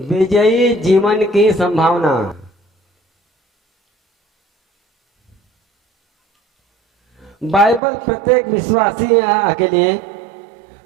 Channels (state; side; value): drops out; left; at 7.8 s